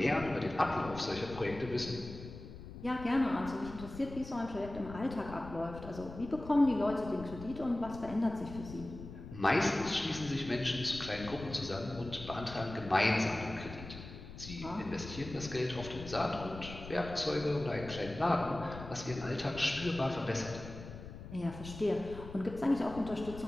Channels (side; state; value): left; noise; rumble, 12 dB below the sound